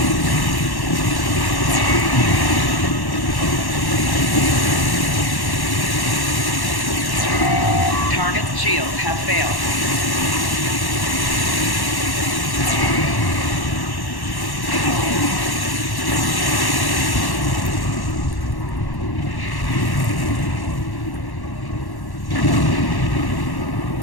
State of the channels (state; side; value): late; right; 1.1 ms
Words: Target's shields have failed.